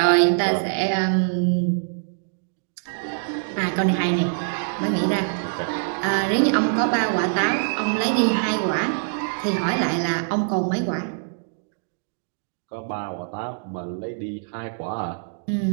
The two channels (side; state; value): left; silent; digital silence